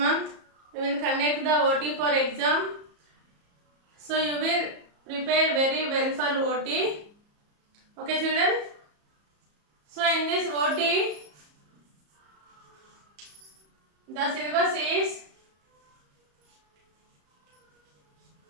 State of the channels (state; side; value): late; left; 34 ms